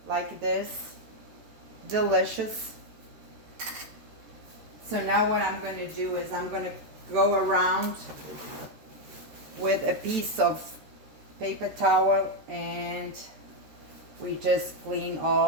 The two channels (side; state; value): left; late; 13 ms